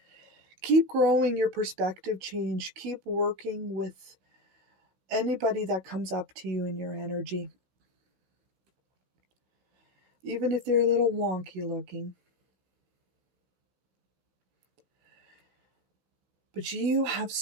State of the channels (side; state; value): left; late; 16 ms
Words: Keep growing your perspective change. Keep working with anybody that comes up to you in your energy. Even if they're a little wonky looking. But you have